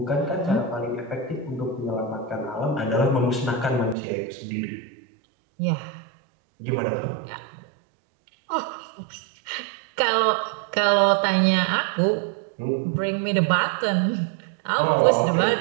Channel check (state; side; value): drops out; left; at 4.0 s